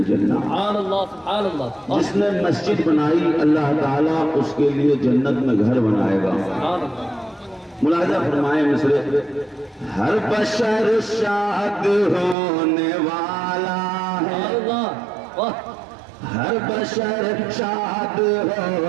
جس نے مسجد بنائی اللہ تعالیٰ اس کے لیے جنت میں گھر بنائے گا۔ ملاحظہ فرمائے مصرے، ہر بشر شاد ہونے والا ہے، ہر بشر شاد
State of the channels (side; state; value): left; drops out; at 12.4 s